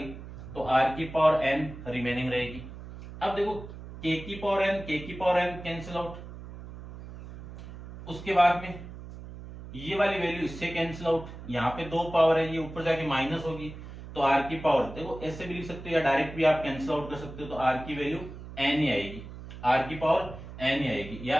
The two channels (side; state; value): right; noise; hum, 13 dB below the sound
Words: तो r की पावर n रिमेनिंग रहेगी। अब देखो k की पावर n कैंसिल आउट, उसके बाद में ये वाली वैल्यू इससे कैंसिल आउट, यहाँ पे 2 पावर है, ये ऊपर जाके माइनस होगी तो r की पावर, देखो ऐसे भी लिख सकते हो या डायरेक्ट भी आप कैंसिल आउट कर सकते हो तो r की वैल्यू n ही आएगी, r की पावर n ही आएगी।